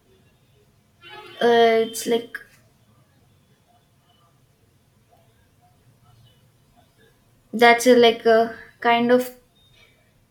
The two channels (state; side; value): identical; both; correlation 1.00